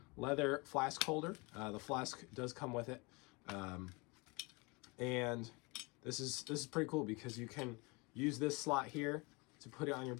leather flask holder. The flask does come with it, and this is pretty cool because you can use this slot here to put it on your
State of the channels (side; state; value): right; quieter; 27.6 dB